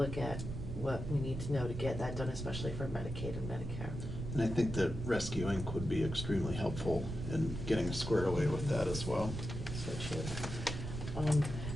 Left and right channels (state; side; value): noise; right; rumble, 6 dB below the sound